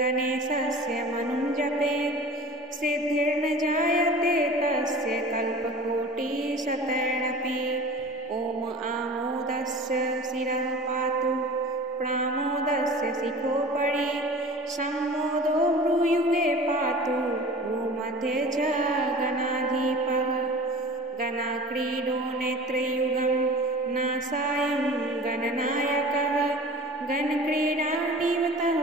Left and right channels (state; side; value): normal; both; correlation 0.39